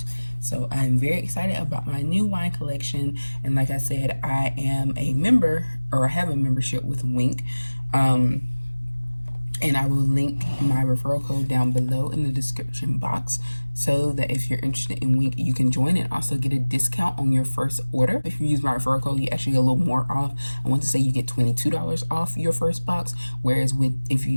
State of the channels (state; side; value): inverted; both; correlation -1.00